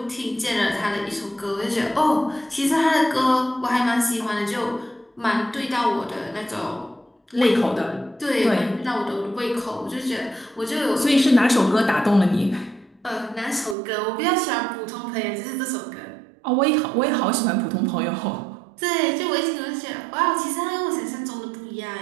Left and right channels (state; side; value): drops out; left; at 13.8 s